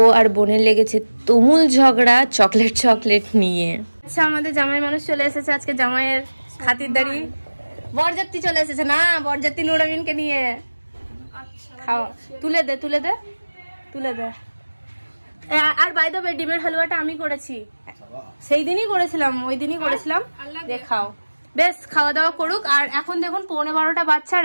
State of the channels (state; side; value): inverted; both; correlation -1.00